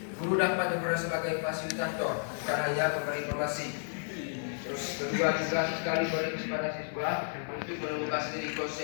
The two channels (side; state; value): right; silent; digital silence